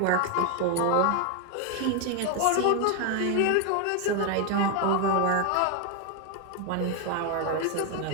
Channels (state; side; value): different; both; correlation 0.01